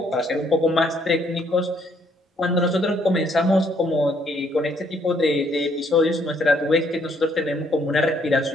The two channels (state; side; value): normal; both; correlation 0.68